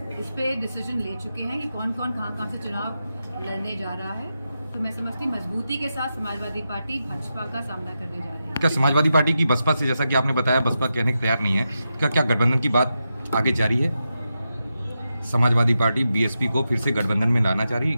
इस पे डिसीजन ले चुके हैं कि कौन कौन कहाँ से चुनाव लड़ने जा रहा है। तो मैं समझती मजबूती के साथ समाजवादी पार्टी भाजपा का सामना करने जा रही है। क्या समाजवादी पार्टी की बसपा से, जैसा कि आपने बताया बसपा कहने को तैयार नहीं है, क्या गठबंधन की बात आगे जारी है? समाजवादी पार्टी बीएसपी को फिर से गठबंधन में लाना चाह रही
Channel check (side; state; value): both; inverted; correlation -0.88